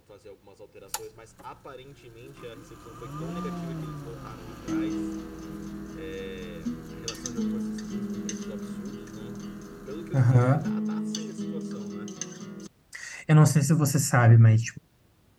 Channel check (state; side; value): identical; both; correlation 1.00